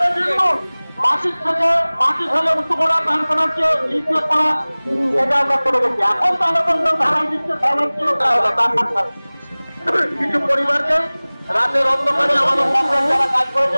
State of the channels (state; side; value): inverted; both; correlation -1.00